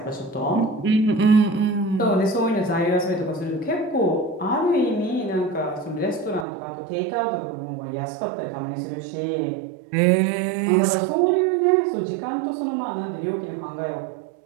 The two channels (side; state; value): left; drops out; at 6.5 s